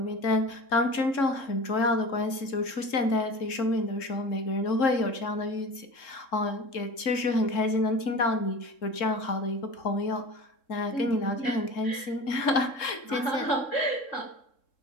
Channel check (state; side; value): late; right; 3.7 ms